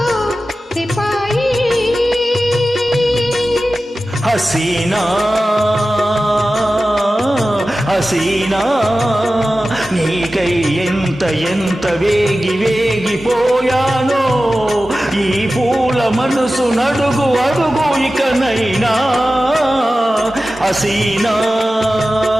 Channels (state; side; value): normal; both; correlation 0.95